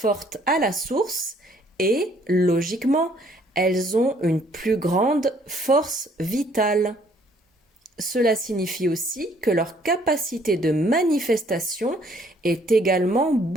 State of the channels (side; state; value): both; normal; correlation 0.63